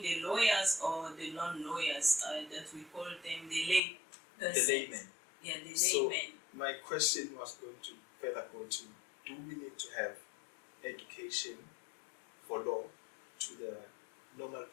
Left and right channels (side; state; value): right; drops out; at 3.8 s